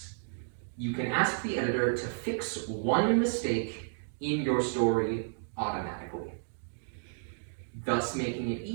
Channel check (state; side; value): silent; left; digital silence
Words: you can ask the editor to fix 1 mistake in your story automatically, thus making it